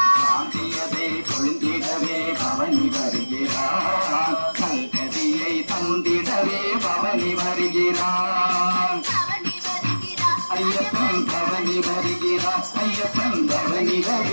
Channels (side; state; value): both; inverted; correlation -1.00